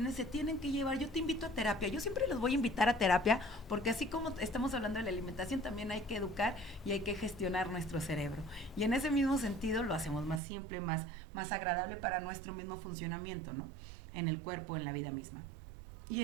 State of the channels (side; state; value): left; drops out; at 10.4 s